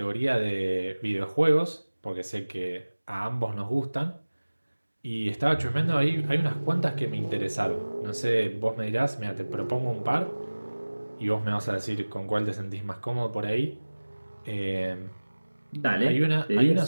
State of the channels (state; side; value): inverted; both; correlation -1.00